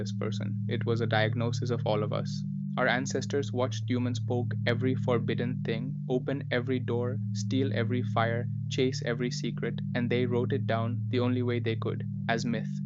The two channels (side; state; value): both; identical; correlation 1.00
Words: person, it was a diagnosis of all of us. Our ancestors watched humans poke every forbidden thing, open every door, steal every fire, chase every secret, and they wrote it down the only way they could, as myth.